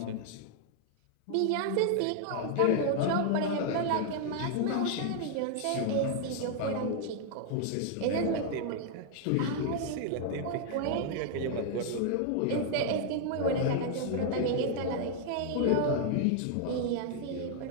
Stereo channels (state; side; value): different; both; correlation 0.00